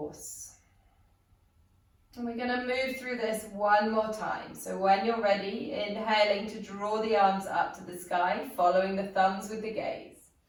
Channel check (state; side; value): identical; both; correlation 1.00